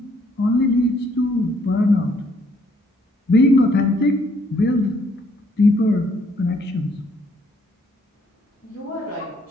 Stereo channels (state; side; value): normal; both; correlation 0.67